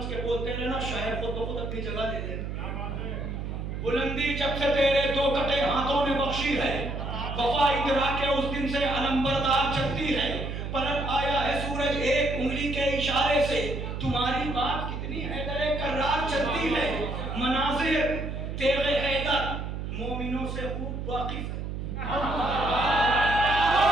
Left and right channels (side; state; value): right; noise; hum, 5 dB below the sound